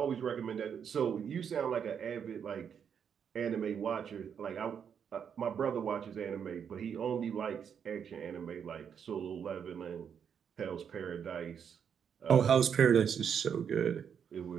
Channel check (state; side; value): quieter; left; 7.6 dB